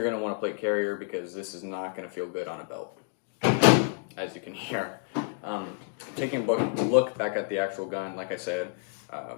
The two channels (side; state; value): right; silent; 58 dB below the other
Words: going to want a plate carrier because this is not going to feel good on a belt, as you can hear. Taking a look back at the actual gun, like I said,